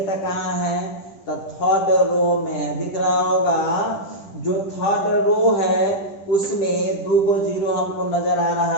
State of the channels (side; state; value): right; late; 10 ms